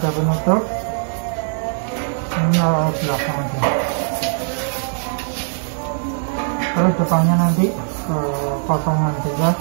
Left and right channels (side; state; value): left; silent; digital silence